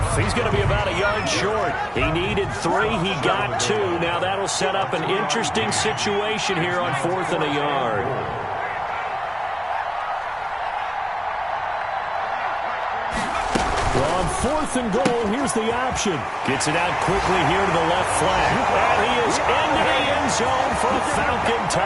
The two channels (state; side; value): identical; both; correlation 1.00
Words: He's going to be about a yard short. He needed 3. He got 2. Now that'll set up an interesting situation here on 4th and a yard. Well, on 4th and goal, here's the option. Gets it out quickly here to the left flank. And he is into the end zone for a Falcon